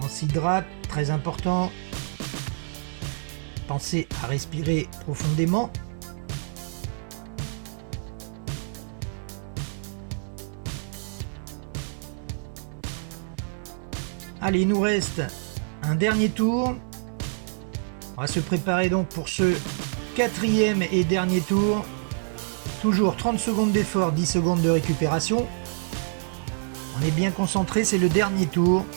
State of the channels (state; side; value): silent; left; 60 dB below the other